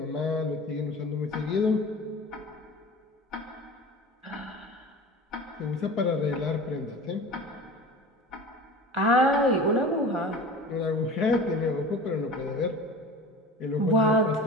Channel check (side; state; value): both; normal; correlation 0.36